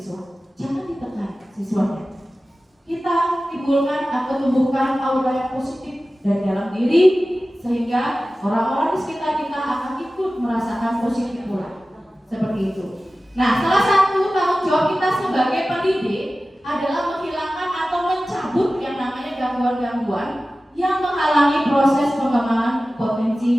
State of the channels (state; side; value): normal; both; correlation 0.96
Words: Jangan ditekan siswanya. Kita timbulkan atau tumbuhkan aura yang positif dari dalam diri, sehingga orang-orang di sekitar kita akan ikut merasakan positif pula. Seperti itu. Nah, salah satu tanggung jawab kita sebagai pendidik adalah menghilangkan atau mencabut yang namanya gangguan-gangguan yang menghalangi proses pengembangan potensi